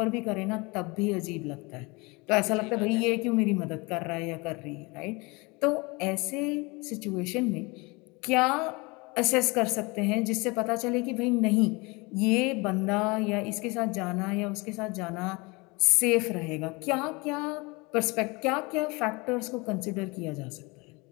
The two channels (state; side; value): quieter; right; 26.3 dB